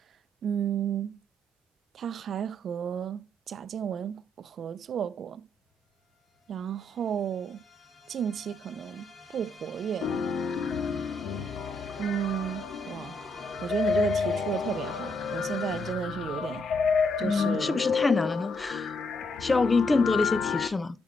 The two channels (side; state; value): both; normal; correlation 0.76